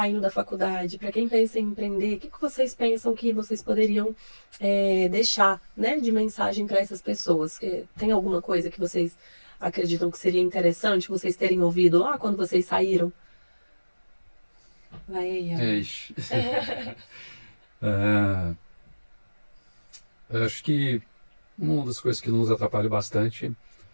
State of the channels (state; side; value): inverted; both; correlation -1.00